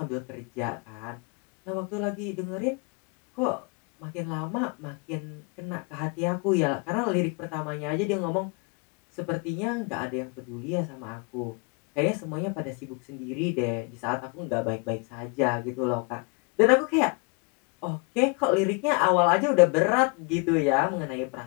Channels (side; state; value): right; quieter; 33.5 dB